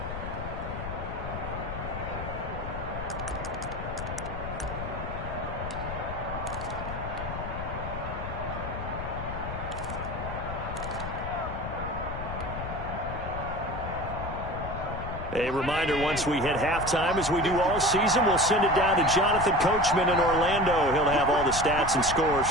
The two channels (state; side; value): noise; left; rumble, 7 dB below the sound